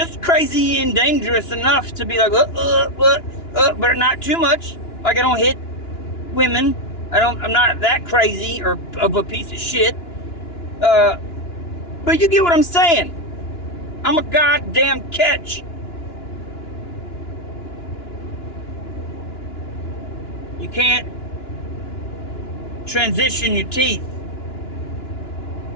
crazy and dangerous enough to be like, but not too much. Like I don't hit women. I'm not that crazy or of a piece of shit. But you get what I'm saying. I'm a goddamn catch. You can't transition your teeth.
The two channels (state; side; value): late; right; 2.9 ms